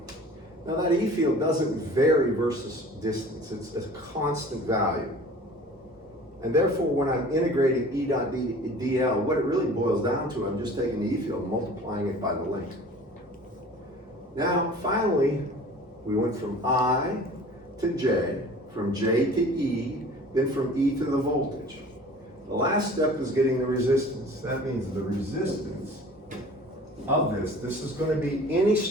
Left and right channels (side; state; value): both; normal; correlation 0.45